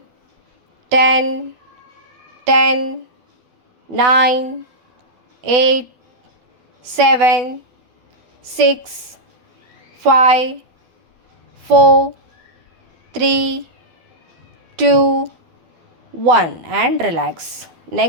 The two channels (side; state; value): left; late; 12 ms